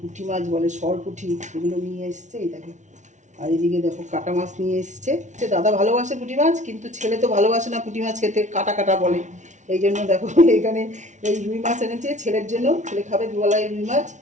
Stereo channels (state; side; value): late; left; 0.35 ms